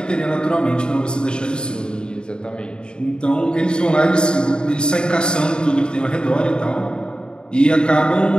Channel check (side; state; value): right; late; 0.050 ms